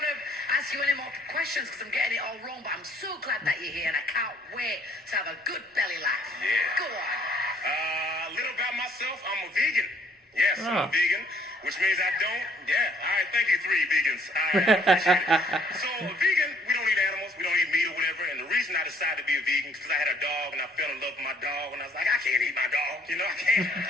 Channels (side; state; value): both; normal; correlation 0.61